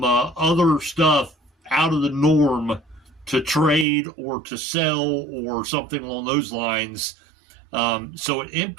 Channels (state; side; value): drops out; left; at 3.9 s